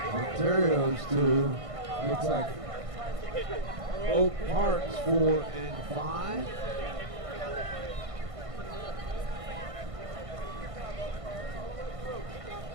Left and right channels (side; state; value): left; late; 1.5 ms